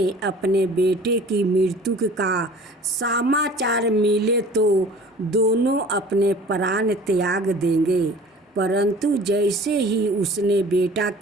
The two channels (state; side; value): normal; both; correlation 0.46